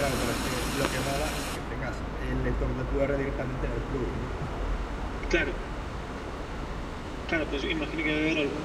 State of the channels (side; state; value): both; identical; correlation 1.00